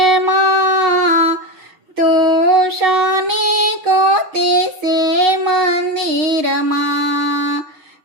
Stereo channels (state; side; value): late; left; 6.4 ms